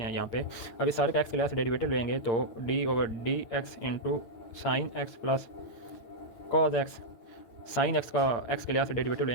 हैं यहाँ पे। अब इस सारे का x के लिहाज से डेरिवेटिव लेंगे तो d over d x into sine x plus cos x, sine x का x के लिहाज से डेरिवेटिव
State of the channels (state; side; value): late; right; 8.8 ms